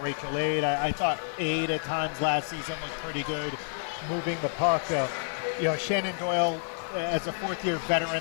Aid? I thought Aid at times last season was pretty good. moving the puck. Shannon Doyle, as a fourth-year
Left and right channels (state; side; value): silent; right; digital silence